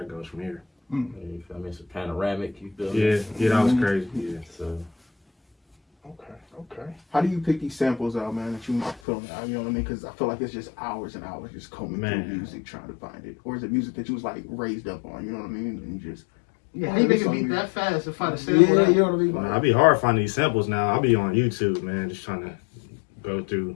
goes from here. You feel me? It's a panoramic. You feel me? Yeah, that was crazy. Yeah. So Okay. How do you pick these samples out, man, that you put on the album? You know what I mean? Because I feel like it's just hours and hours just combing through music trying to find it. Or is it music that you was like raised up on? You know what I mean? And you just How you make a beat that fast to find a sample? Yeah, you know what I mean? Man, I'd be hard finding these samples now. I'll be on YouTube, man, just trying to go through.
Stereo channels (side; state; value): right; drops out; at 9.0 s